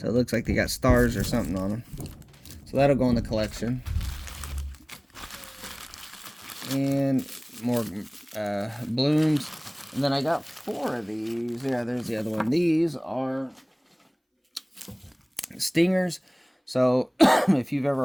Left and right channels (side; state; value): both; identical; correlation 1.00